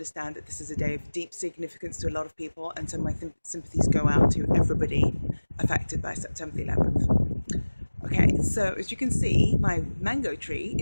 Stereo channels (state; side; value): inverted; both; correlation -1.00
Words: that this is a day of deep significance to a lot of people, and so my sympathies go out to everybody affected by September the 11th. Okay, so as you can see, my mango tree